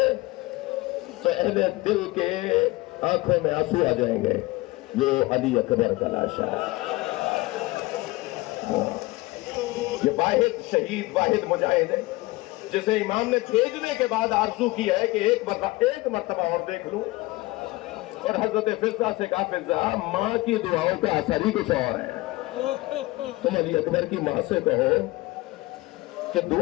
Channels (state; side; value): quieter; right; 20.9 dB